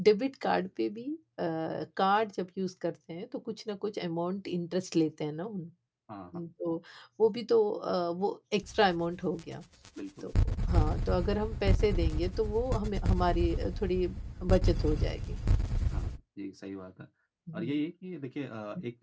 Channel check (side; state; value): both; identical; correlation 1.00